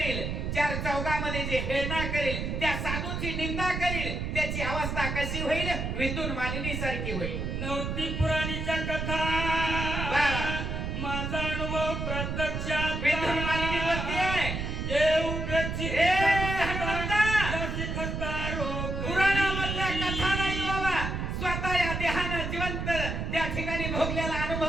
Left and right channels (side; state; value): right; noise; rumble, 3 dB below the sound